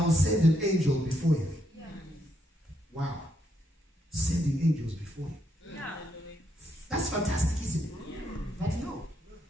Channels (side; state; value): both; normal; correlation 0.77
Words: send an angel before you. Yeah. Wow. Sending angels before you. Yeah. That's fantastic, isn't it? Yeah. But no,